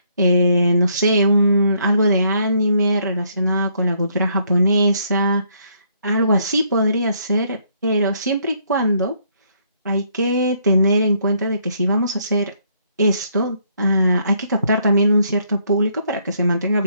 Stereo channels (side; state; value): both; inverted; correlation -0.69